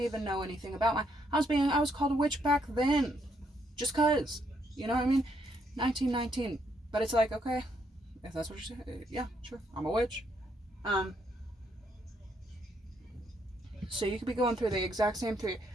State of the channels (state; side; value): normal; both; correlation 0.73